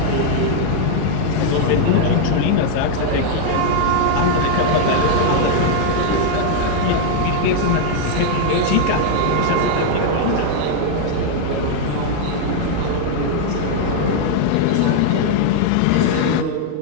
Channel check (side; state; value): both; different; correlation 0.00